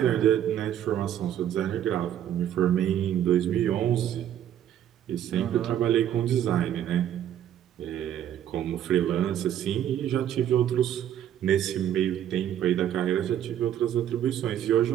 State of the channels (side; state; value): left; quieter; 10.6 dB